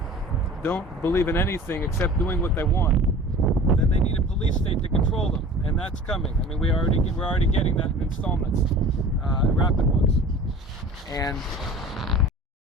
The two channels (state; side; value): normal; both; correlation 0.42